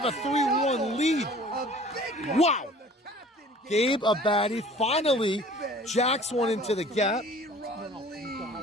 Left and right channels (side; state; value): both; normal; correlation 0.48